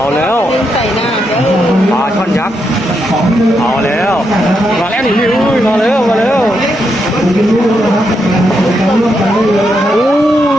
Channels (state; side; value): normal; both; correlation 0.81